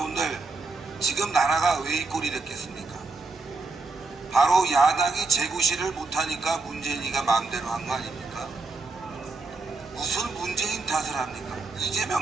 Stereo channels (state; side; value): quieter; left; 3.7 dB